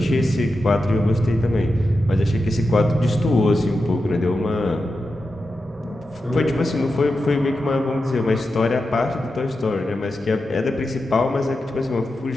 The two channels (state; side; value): normal; both; correlation 0.90